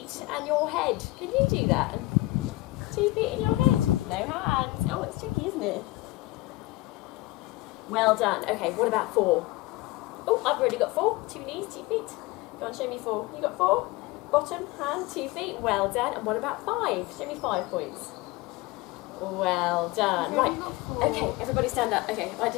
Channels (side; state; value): right; quieter; 19.8 dB